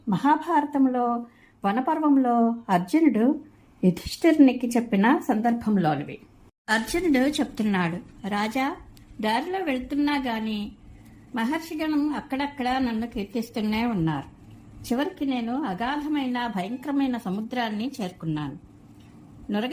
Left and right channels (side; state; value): both; identical; correlation 1.00